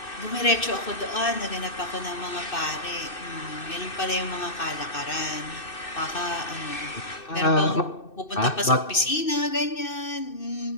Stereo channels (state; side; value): late; right; 2.6 ms